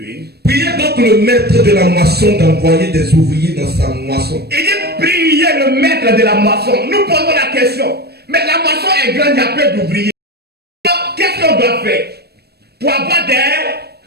Priez donc le maître de la moisson d'envoyer des ouvriers dans sa moisson. Il dit priez le maître de la moisson. Nous posons la question. Mais la moisson est grande, il y a peu d'ouvriers. Alors, qu'est-ce qu'on doit faire pour avoir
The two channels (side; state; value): left; late; 0.47 ms